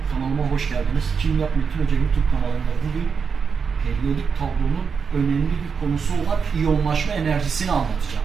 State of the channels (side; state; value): left; quieter; 5.9 dB